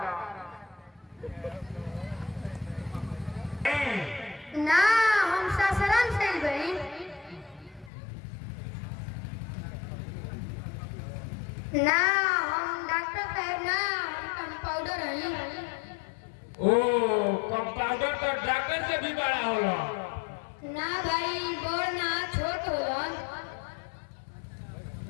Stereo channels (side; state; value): right; drops out; at 7.9 s